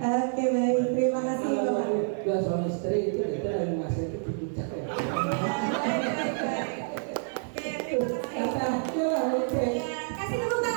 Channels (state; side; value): silent; left; digital silence